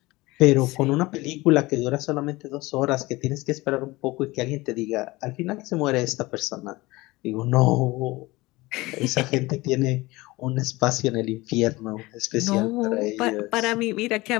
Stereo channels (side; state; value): right; quieter; 21.1 dB